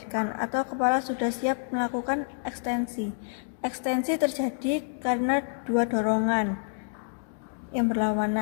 atau kepala sudah siap melakukan ekstensi. Ekstensi terjadi karena dua dorongan yang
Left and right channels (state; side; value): silent; right; digital silence